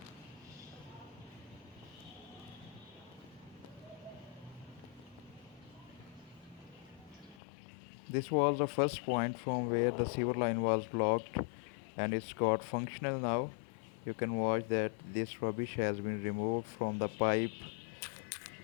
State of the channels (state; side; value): drops out; right; at 7.4 s